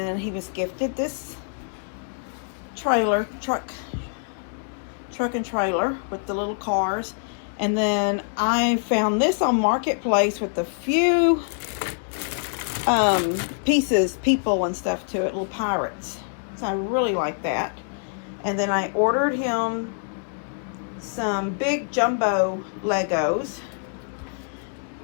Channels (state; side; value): silent; right; digital silence